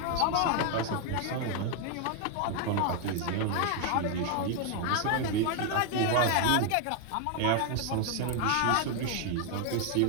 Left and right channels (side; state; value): both; different; correlation 0.01